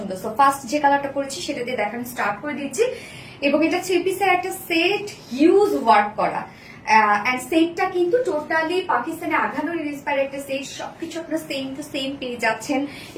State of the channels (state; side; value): identical; both; correlation 1.00